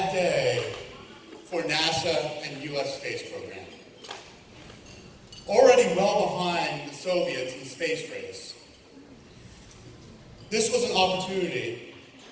day for NASA and US space program. Already well behind the Soviets in the space race, this was an opportunity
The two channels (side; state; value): both; identical; correlation 1.00